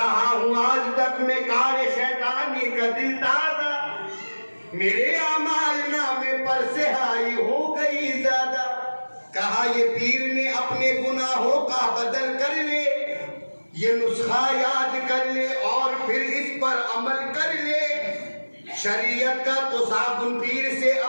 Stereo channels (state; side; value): inverted; both; correlation -1.00